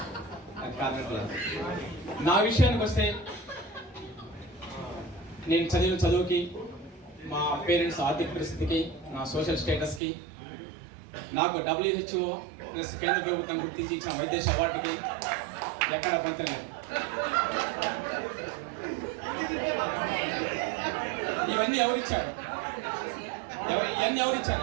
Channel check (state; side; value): drops out; left; at 10.0 s